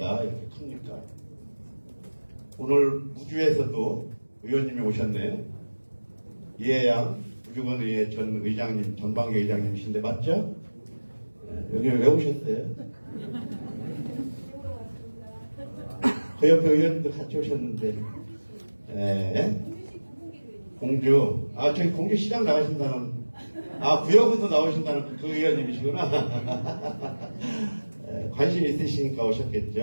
이렇게 큽니까? 오늘 우주에서도 의원님이 오셨네요. 이해양 우주건의회 전 의장님, 전방위 의장님이신데 맞죠? 네, 여기 왜 오셨어요? 그 옆에 의원님도 같이 오셨는데 네. 공주 저기 공주시장 나가신다는 구역에서 나오신다는 그 의원님이시구나. 관심 있으시니까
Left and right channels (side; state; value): both; inverted; correlation -1.00